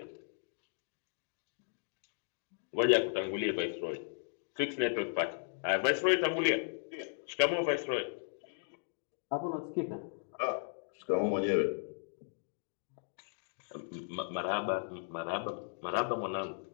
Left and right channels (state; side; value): silent; right; digital silence